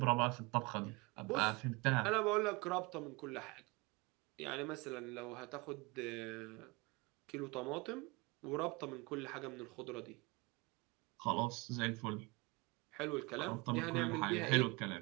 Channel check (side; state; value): left; quieter; 26.0 dB